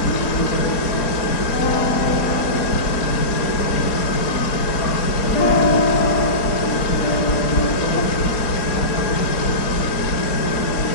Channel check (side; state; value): right; late; 4.3 ms